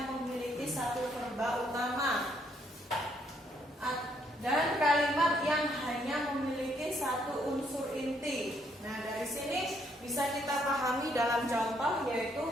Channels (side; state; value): both; normal; correlation 0.71